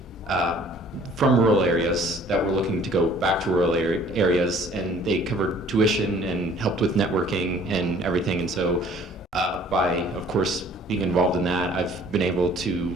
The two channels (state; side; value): normal; both; correlation 0.54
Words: from rural areas that were looking to go back to rural areas, and they covered tuition and helped with networking and everything. And so by, of course, being involved in that, I've been able